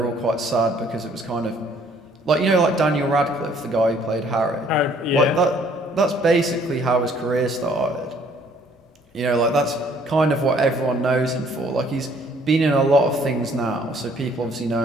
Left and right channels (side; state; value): both; normal; correlation 0.61